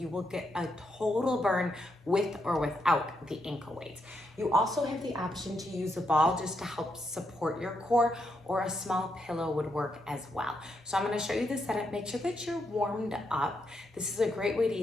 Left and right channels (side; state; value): both; normal; correlation 0.80